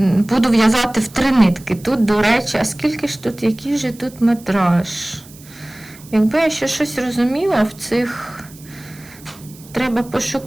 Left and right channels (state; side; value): noise; right; hiss, 22 dB below the sound